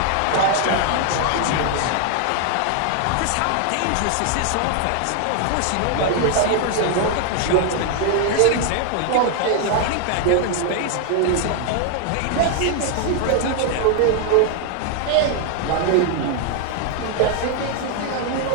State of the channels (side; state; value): both; different; correlation 0.00